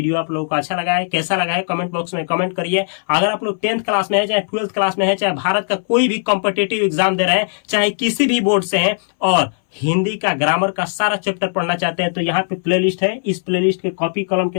आप लोगों को अच्छा लगा है, कैसा लगा है, कमेंट बॉक्स में कमेंट करिए। अगर आप लोग 10th क्लास में है, चाहे 12th क्लास में है, चाहे भारत का कोई भी कॉम्पिटेटिव एग्जाम दे रहे हैं, चाहे किसी भी बोर्ड से हैं, और हिंदी का ग्रामर का सारा चैप्टर पढ़ना चाहते हैं तो यहाँ पे प्लेलिस्ट है, इस प्लेलिस्ट के कॉपी कलम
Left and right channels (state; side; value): silent; right; 62 dB below the other